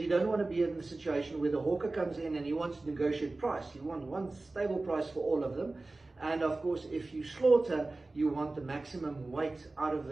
you don't want to be in the situation where the hawker comes in and he wants to negotiate price. You want one stable price for all of them. And of course, if you slaughter, you want the maximum weight out of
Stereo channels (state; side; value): quieter; left; 3.2 dB